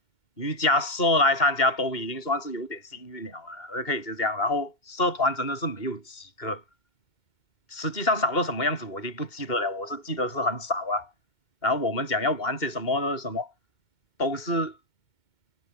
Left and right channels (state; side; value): late; right; 2.2 ms